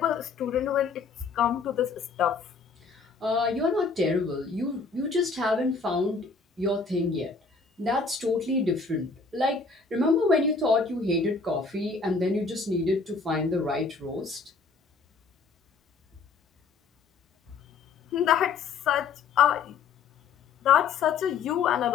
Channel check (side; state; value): right; quieter; 4.7 dB